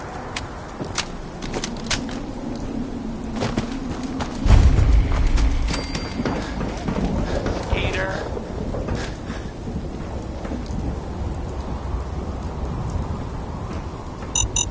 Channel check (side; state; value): both; identical; correlation 1.00